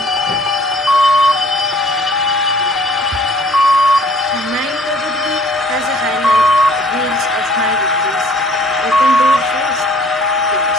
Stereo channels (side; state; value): both; normal; correlation 0.54